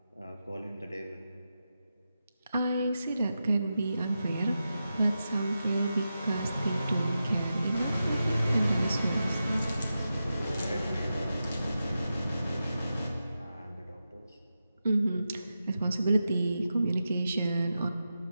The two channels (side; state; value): both; inverted; correlation -0.90